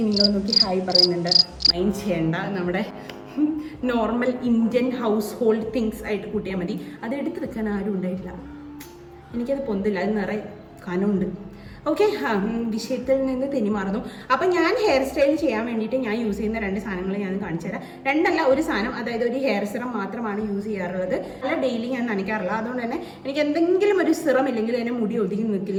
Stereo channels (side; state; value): both; identical; correlation 1.00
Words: നോക്കി ഹായ് പറയുന്നുണ്ട്, മൈൻഡ് ചെയ്യേണ്ട. നമ്മുടെ normal Indian house hold things ആയിട്ട് കൂട്ടിയാൽ മതി. അത് എടുത്ത് വെക്കാൻ ആരും ഉണ്ടായിട്ടില്ല. എനിക്കത് പൊന്തില്ല, അത് നിറയെ കനമുണ്ട്. ഓക്കെ, വിഷയത്തിൽ നിന്ന് തെന്നിമാറുന്നു. അപ്പം ഞാൻ ഹെയർ സ്റ്റൈൽ ചെയ്യാൻ വേണ്ടിയിട്ട് ഞാൻ യൂസ് ചെയ്യുന്ന 2 സാധനങ്ങൾ ഞാൻ കാണിച്ചു തരാം. 2 അല്ല, ഒരു സാധനം, അതായത് ഒരു ഹെയർ സിറം മാത്രമാണ് യൂസ് ചെയ്യാറുള്ളത്. അല്ല, ഡെയിലി ഞാൻ നനയ്ക്കാറില്ല. അതുകൊണ്ട് തന്നെ എനിക്ക് എന്തെങ്കിലും ഒരു സിറം ഇല്ലെങ്കിൽ അതിന് മുടി ഒതുങ്ങി